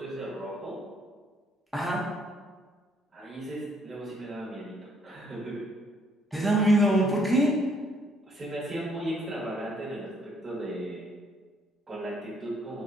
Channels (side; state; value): both; normal; correlation 0.67